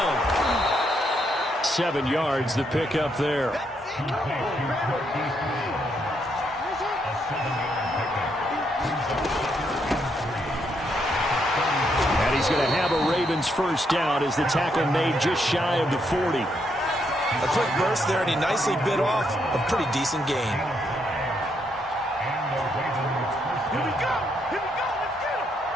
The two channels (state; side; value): normal; both; correlation 0.76